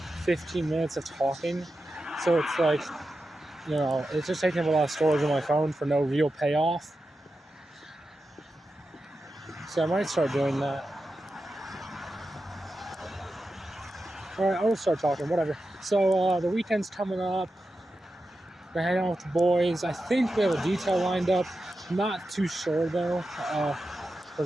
15 minutes of talking. So it's like, you know, it's just taking up a lot of storage on my phone for no real payoff. So I might start doing that. Alright, I'll start talking, whatever. So the weekend's coming up. We're hanging out with the boys. I think we have a detail lined up. Not too sure though,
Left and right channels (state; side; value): normal; both; correlation 0.91